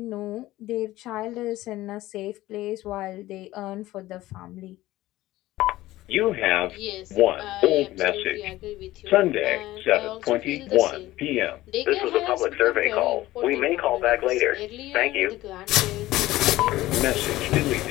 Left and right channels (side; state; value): right; quieter; 16.7 dB